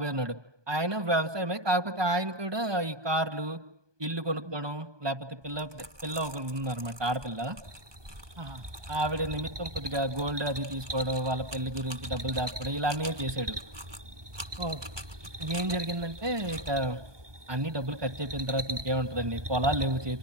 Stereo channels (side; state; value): left; late; 1.2 ms